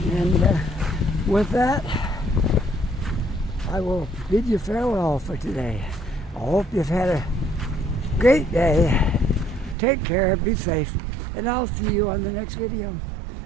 And with that, I will bid you farewell for today. I hope you've had a great day. Take care, be safe, and I'll see you on the next video.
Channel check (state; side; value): drops out; left; at 9.8 s